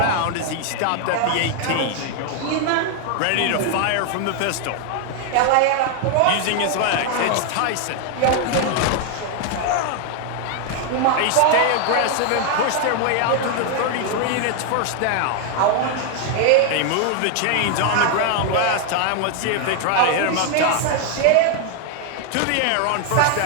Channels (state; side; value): different; both; correlation 0.00